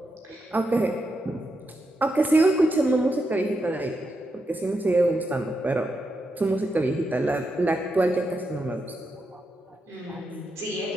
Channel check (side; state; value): both; normal; correlation 0.85